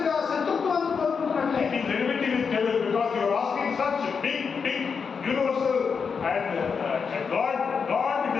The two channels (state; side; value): quieter; right; 5.8 dB